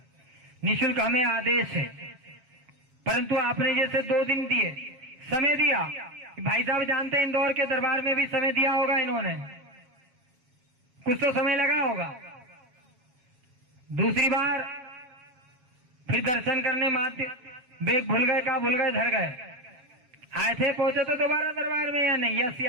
निःशुल्क हमें आदेश है। परंतु आपने जैसे 2 दिन दिए, समय दिया, भाई साहब जानते हैं इंदौर के दरबार में भी समय दिया होगा इन्होंने, कुछ तो समय लगा होगा। दूसरी बार फिर दर्शन करने मात्र बैग भूल गए, कहा भूल गए, धर गए, आए थे, पहुंचे तो दोबारा दरबार में या नहीं, यस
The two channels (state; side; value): late; left; 7.2 ms